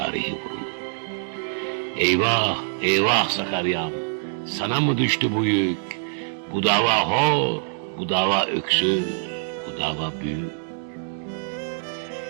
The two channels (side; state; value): left; silent; digital silence